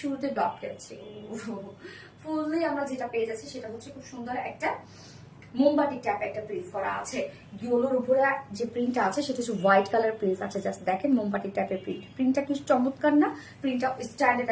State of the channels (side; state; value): both; identical; correlation 1.00